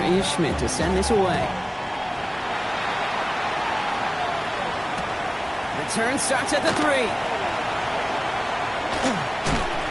is Schmidt to send this away. Return starts at the 3.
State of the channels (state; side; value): identical; both; correlation 1.00